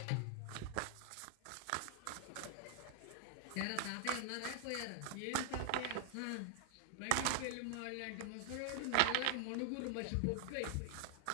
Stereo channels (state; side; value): different; both; correlation 0.00